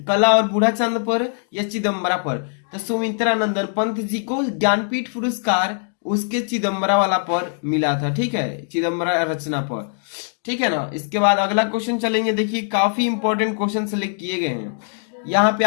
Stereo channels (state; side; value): silent; right; 65 dB below the other